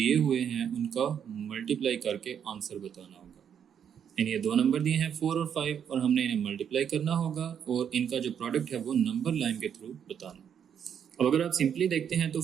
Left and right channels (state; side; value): quieter; left; 8.3 dB